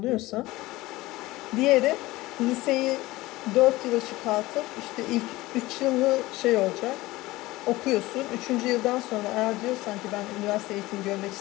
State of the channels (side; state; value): right; quieter; 18.9 dB